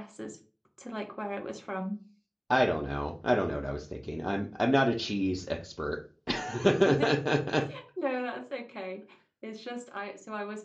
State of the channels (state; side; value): identical; both; correlation 1.00